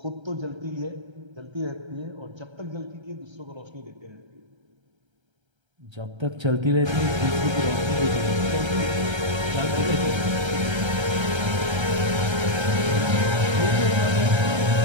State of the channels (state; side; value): late; left; 1.3 ms